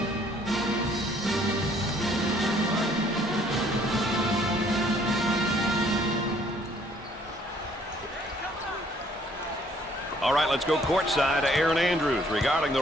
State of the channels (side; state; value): both; normal; correlation 0.62